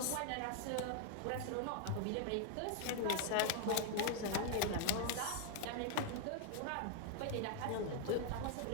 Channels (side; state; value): both; different; correlation 0.00